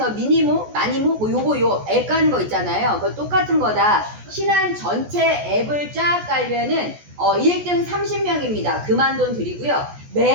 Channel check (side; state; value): left; late; 14 ms